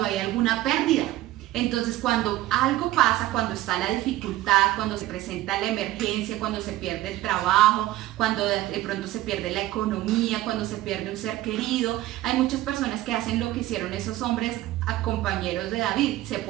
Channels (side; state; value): left; quieter; 15.8 dB